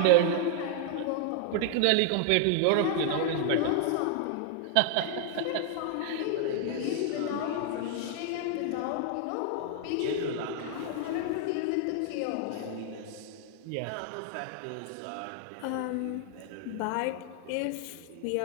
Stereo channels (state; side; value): different; both; correlation 0.00